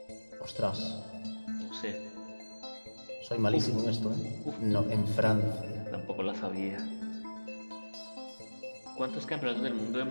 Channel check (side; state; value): both; inverted; correlation -1.00